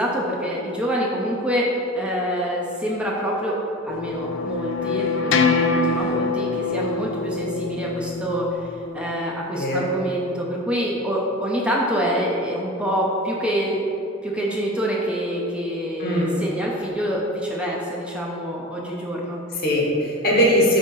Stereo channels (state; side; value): normal; both; correlation 0.30